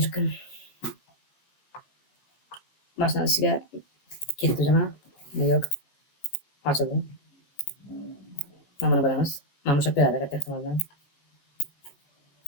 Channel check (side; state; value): right; late; 15 ms